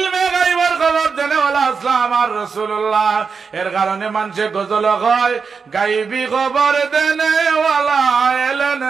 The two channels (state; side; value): quieter; left; 5.4 dB